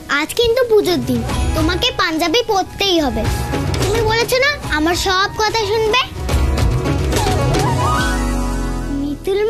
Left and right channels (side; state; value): both; identical; correlation 1.00